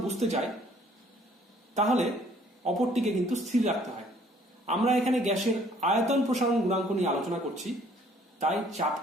বুঝতে চাই তাহলে অপরটিকে কিন্তু স্থির রাখতে হয়। আমরা এখানে গ্যাসের আয়তন প্রসারণ গুণাঙ্ক নিয়ে আলোচনা করছি, তাই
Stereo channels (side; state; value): both; normal; correlation 0.60